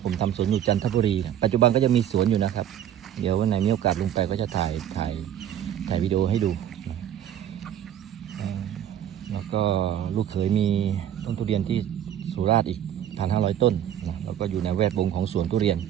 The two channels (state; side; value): quieter; left; 10.5 dB